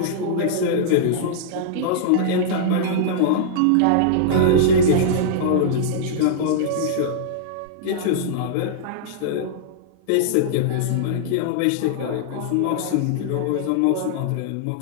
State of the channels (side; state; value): both; different; correlation -0.02